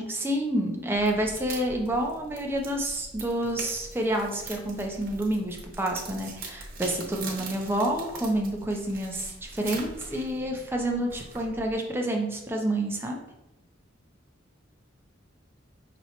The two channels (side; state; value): both; normal; correlation 0.59